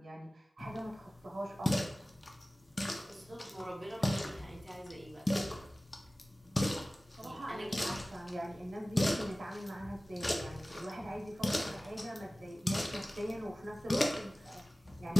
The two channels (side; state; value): both; normal; correlation 0.97